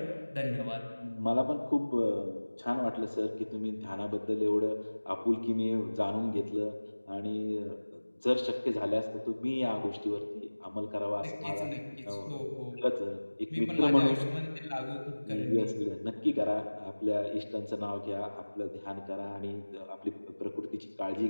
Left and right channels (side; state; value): both; inverted; correlation -1.00